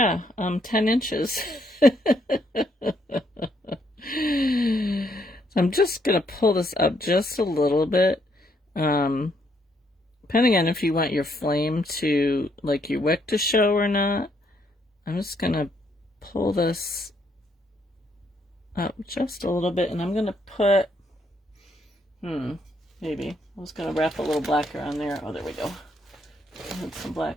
10 inches. So I'm just going to pull this up just a little bit. Depending on if you want your flame to, like your wick to show or not, I'm just going to pull this up just a little bit, and I'm going to put, maybe. I was going to wrap a little black around there. Oh, there we go. I had some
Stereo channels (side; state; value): both; normal; correlation 0.73